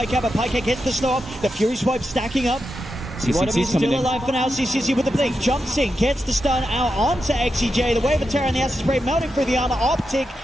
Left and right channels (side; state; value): both; normal; correlation 0.87